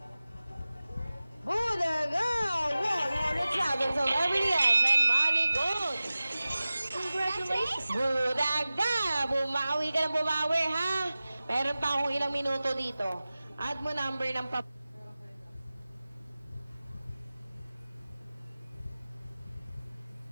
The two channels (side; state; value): both; inverted; correlation -0.97